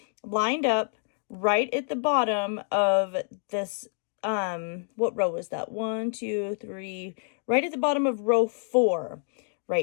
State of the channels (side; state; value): right; silent; digital silence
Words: lined up right at the bottom of this, what row is that? 1, 2, 3, right at the bottom of row 4